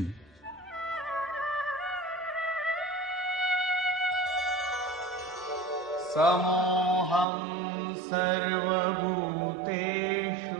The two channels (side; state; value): left; drops out; at 7.2 s